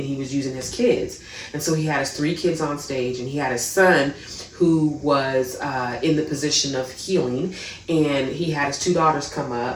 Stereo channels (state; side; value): identical; both; correlation 1.00